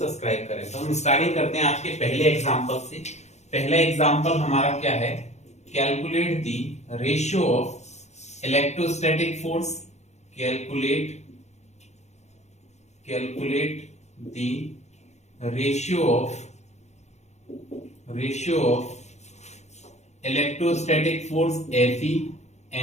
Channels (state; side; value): late; right; 0.33 ms